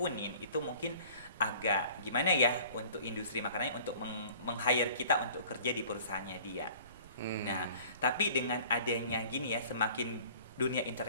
itu mungkin agak gimana ya untuk industri makanannya untuk meng-hire kita untuk kerja di perusahaannya dia. Nah, tapi dengan adanya gini ya, semakin dunia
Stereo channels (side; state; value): both; inverted; correlation -0.48